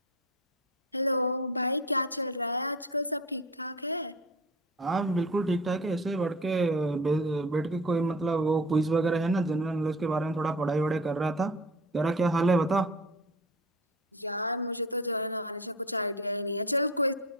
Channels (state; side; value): normal; both; correlation 0.34